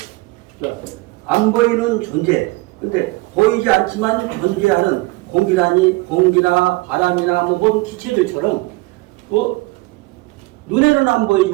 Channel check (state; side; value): quieter; left; 22.4 dB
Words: 그러니까 안 보이는 존재. 근데 보이지 않지만 존재하는 공기나 바람이나 뭔 기체들처럼 눈에는 안